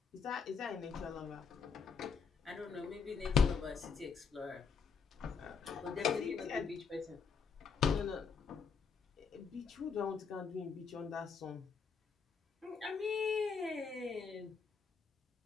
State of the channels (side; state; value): right; quieter; 5.8 dB